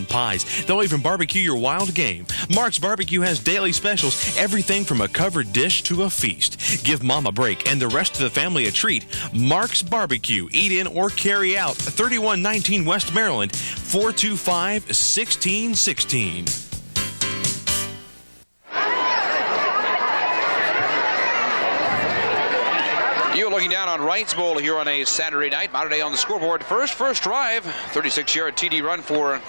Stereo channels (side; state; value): both; inverted; correlation -1.00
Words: pies. They'll even barbecue your wild game. Mark's Barbecue has daily specials, everything from a covered dish to a feast. Give Mom a break and the rest of the family a treat. Mark's Barbecue. Eat in or carry out. 3119 West Maryland, 425-1616. You're looking down on Wrights Bowl here on a Saturday night. Mater Dei on the scoreboard first drive. 36-yard TD run for